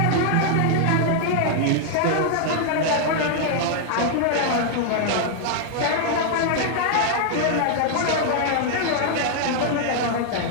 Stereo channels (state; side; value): different; both; correlation 0.00